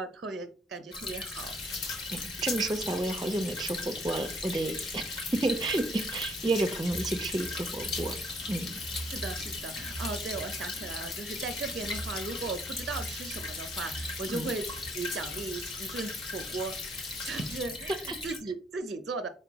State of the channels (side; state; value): both; normal; correlation 0.66